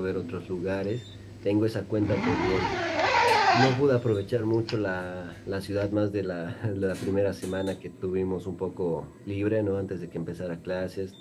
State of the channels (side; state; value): both; identical; correlation 1.00